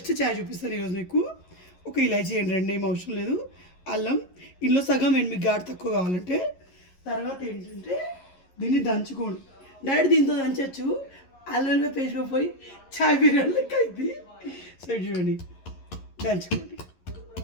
చాయ్ చూపిస్తాను ఈరోజు మీకు. ఒక ఇలాచీ వేయండి, 2 ఏం అవసరం లేదు. అల్లం ఇందులో సగం వేయండి మీకు ఘాటు తక్కువ కావాలంటే. తర్వాత ఏంటంటే దీన్ని దంచుకోండి. డైరెక్ట్ దీంతో దంచచ్చు, అల్లం పేస్ట్ పోయి చాయ్ బిర్యానీ లెక్క అయింది. సో చూడండి, దంచుకోండి.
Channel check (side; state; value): right; late; 11 ms